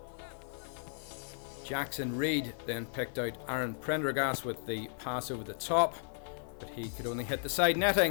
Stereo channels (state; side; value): silent; right; 54 dB below the other